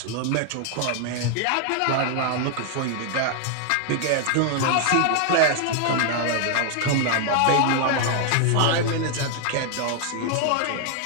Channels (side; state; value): both; different; correlation 0.00